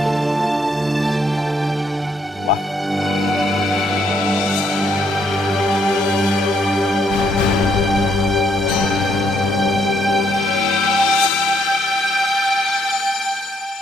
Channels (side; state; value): both; normal; correlation 0.73